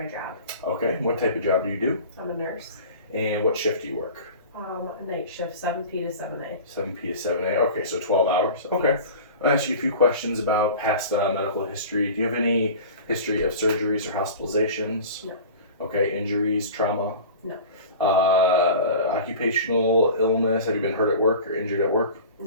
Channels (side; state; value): both; inverted; correlation -0.37